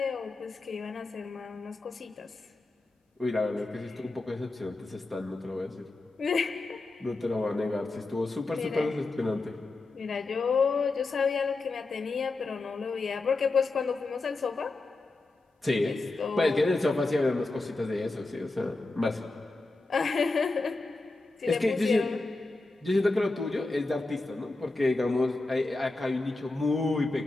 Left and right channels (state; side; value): quieter; right; 3.3 dB